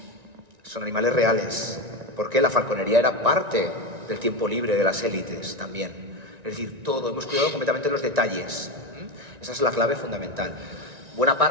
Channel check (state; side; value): late; left; 1.9 ms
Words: animales reales, porque la falconería era parte del tiempo libre de las élites también. Es decir, todo, hemos cuidado completamente los detalles. Esa es la clave fundamental. Buena